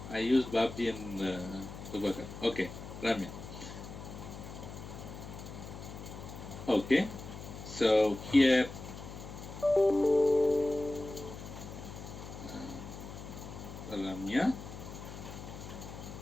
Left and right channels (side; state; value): left; noise; hum, 11 dB below the sound